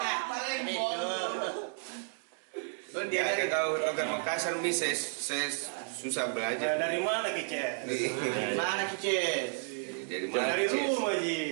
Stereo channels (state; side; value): silent; left; 56 dB below the other